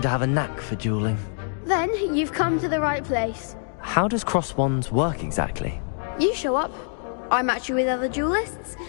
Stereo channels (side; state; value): right; silent; digital silence